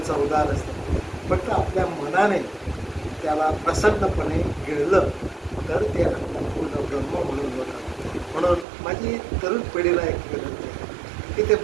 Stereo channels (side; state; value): left; drops out; at 8.7 s